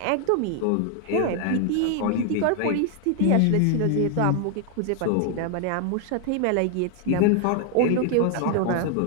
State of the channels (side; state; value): both; different; correlation 0.00